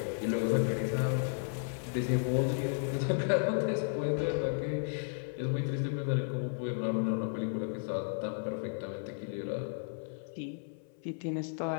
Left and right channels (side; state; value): right; silent; 55 dB below the other